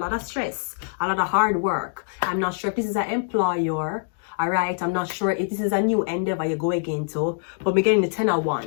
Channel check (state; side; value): silent; right; digital silence